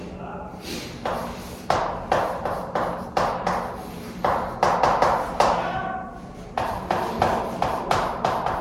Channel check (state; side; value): identical; both; correlation 1.00